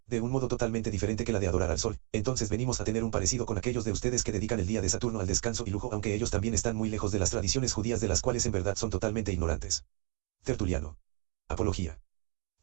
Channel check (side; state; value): left; quieter; 28.3 dB